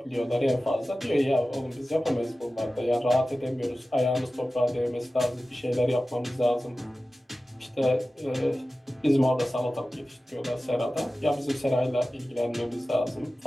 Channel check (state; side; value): normal; both; correlation 0.95